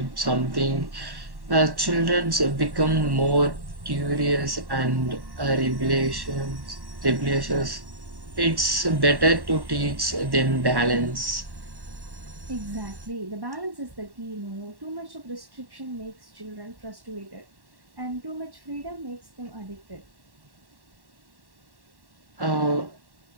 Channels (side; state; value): left; late; 1.1 ms